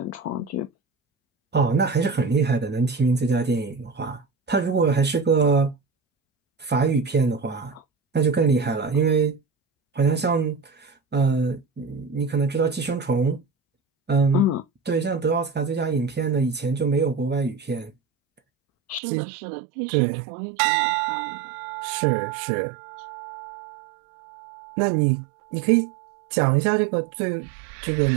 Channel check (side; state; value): left; drops out; at 19.0 s